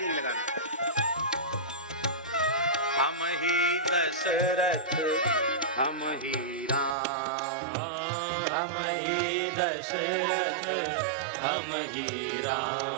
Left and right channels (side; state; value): left; drops out; at 7.0 s